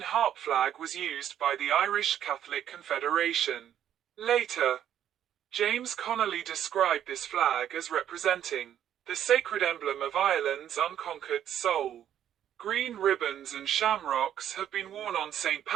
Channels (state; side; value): quieter; left; 10.4 dB